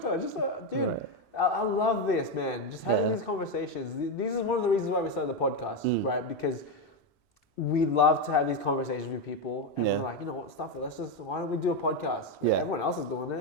talk. Just, dude, I love this, man. Just having these conversations. These are one of the reasons why we started the podcast, right? Because we love to have these conversations with people, and we're like, you know what, stuff it. Why don't we do a podcast? Right? Everyone else is doing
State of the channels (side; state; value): both; normal; correlation 0.08